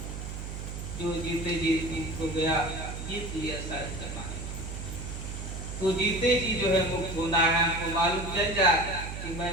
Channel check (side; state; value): right; noise; hum, 7 dB below the sound